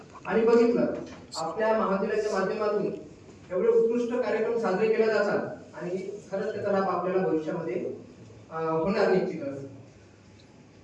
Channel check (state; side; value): identical; both; correlation 1.00